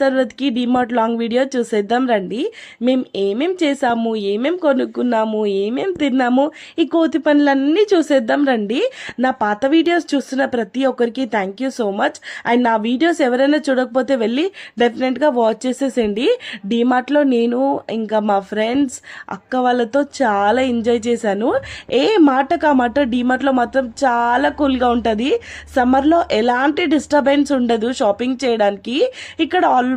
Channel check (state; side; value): identical; both; correlation 1.00